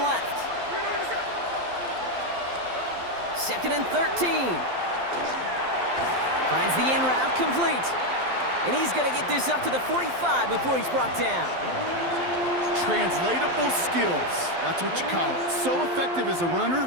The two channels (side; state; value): left; late; 12 ms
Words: 2nd and 13. Finds the in route complete. And he's going to get this up to the 45 before he's brought down. Translatable skills, that's what you call it. So effective as a